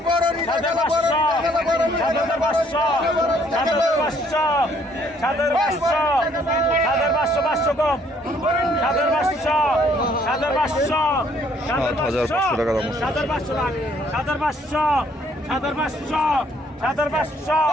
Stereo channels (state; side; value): normal; both; correlation 0.64